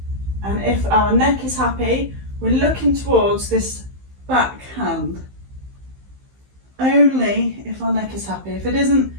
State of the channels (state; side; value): late; left; 15 ms